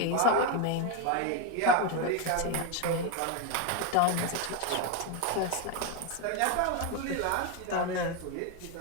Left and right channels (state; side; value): different; both; correlation 0.02